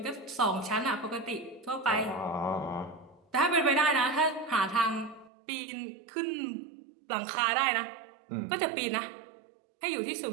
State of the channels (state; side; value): drops out; left; at 5.3 s